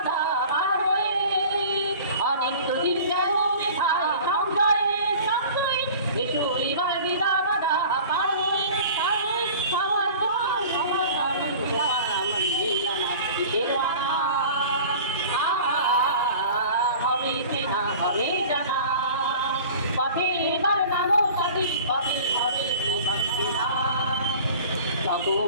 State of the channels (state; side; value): inverted; both; correlation -0.42